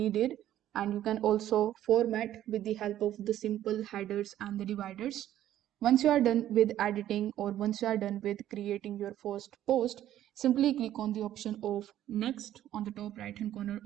and you can also format with the help of the simple headers and the dividers. Once you are done with editing, or once you are done with creating your first post, simply click on the option of next on the top right hand corner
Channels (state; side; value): quieter; left; 12.3 dB